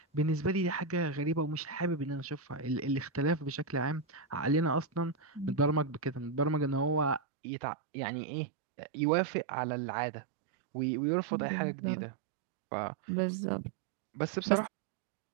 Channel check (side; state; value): left; drops out; at 7.2 s